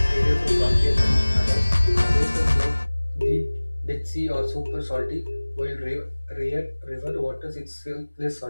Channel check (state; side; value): inverted; both; correlation -1.00